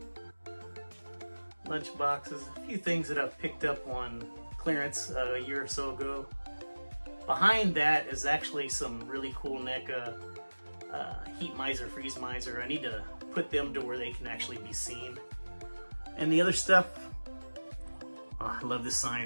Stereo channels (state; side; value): inverted; both; correlation -1.00